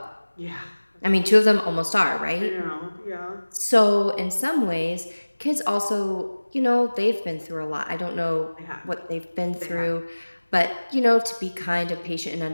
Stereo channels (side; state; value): both; inverted; correlation -1.00